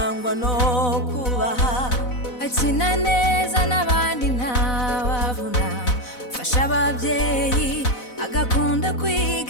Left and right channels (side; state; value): right; late; 4.0 ms